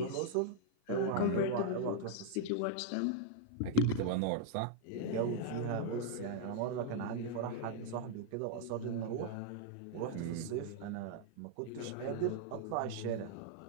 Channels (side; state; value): both; different; correlation -0.01